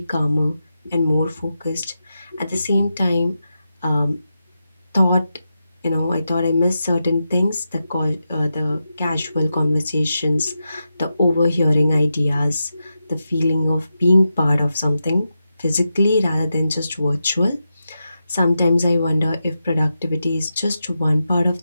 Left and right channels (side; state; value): both; inverted; correlation -0.89